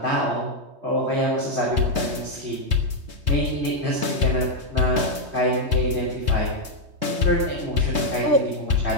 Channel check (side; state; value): left; late; 3.2 ms